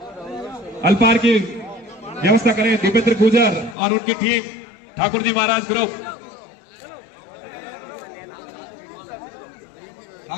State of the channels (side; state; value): right; drops out; at 3.8 s